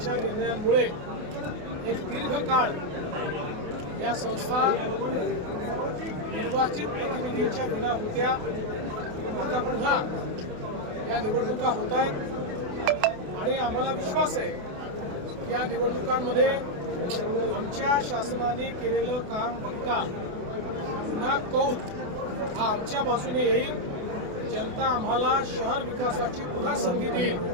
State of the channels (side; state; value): left; late; 28 ms